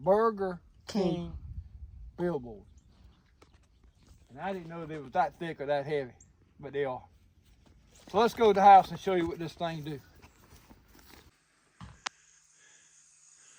King billboard. And I didn't know they was that thick or that heavy, but they are. So let's go to the house and show you what this thing do.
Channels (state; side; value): identical; both; correlation 1.00